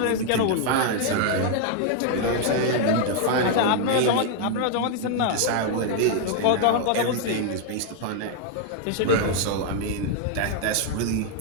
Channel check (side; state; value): both; different; correlation 0.00